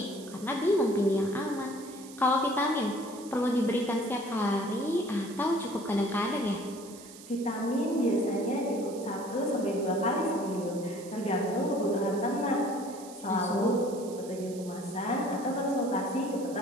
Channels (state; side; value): noise; right; hiss, 18 dB below the sound